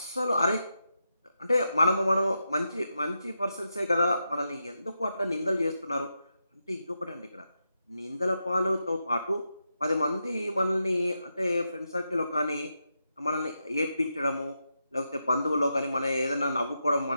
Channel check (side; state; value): both; inverted; correlation -0.86